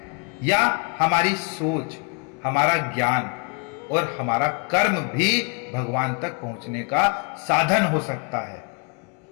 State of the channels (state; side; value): quieter; right; 34.1 dB